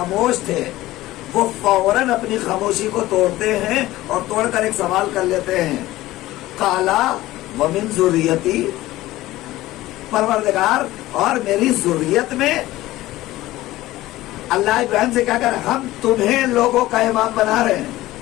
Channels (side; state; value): right; quieter; 16.8 dB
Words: تھے، وہ فوراً اپنی خاموشی کو توڑتے ہیں اور توڑ کر ایک سوال کر لیتے ہیں، قالا ومن ذریتی، پروردگار اور میری ذریت میں۔ اللہ ابراہیم سے کیا کر ہم تمہیں لوگوں کا امام بنا رہے ہیں۔